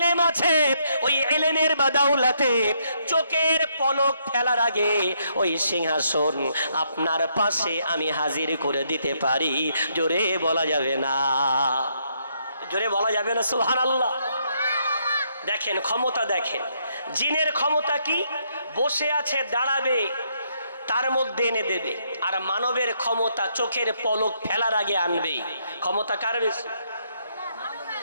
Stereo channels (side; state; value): both; inverted; correlation -0.74